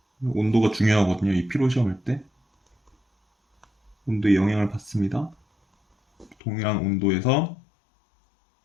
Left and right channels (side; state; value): right; drops out; at 6.4 s